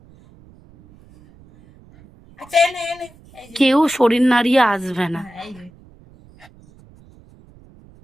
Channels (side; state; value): right; noise; rumble, 26 dB below the sound